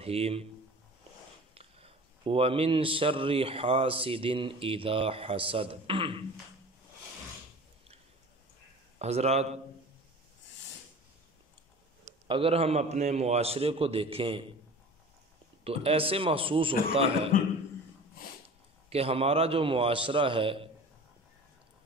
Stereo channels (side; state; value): both; normal; correlation 0.40